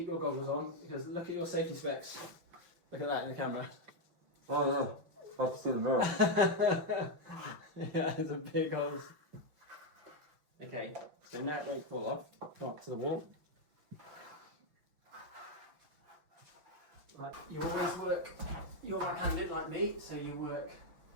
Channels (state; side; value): late; left; 5.9 ms